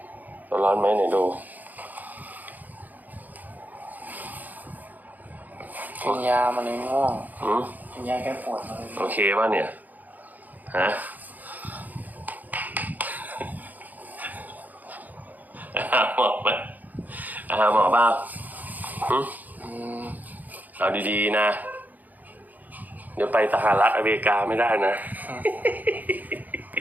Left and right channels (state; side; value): late; left; 0.082 ms